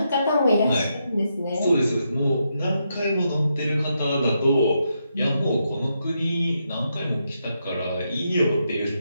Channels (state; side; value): inverted; both; correlation -0.81